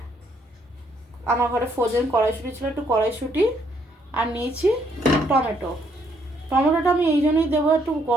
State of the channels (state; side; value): normal; both; correlation 0.70